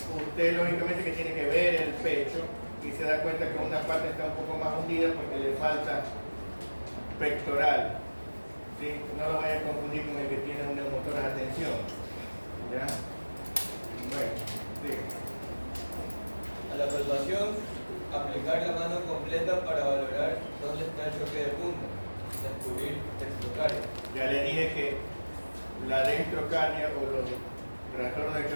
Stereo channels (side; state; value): both; inverted; correlation -1.00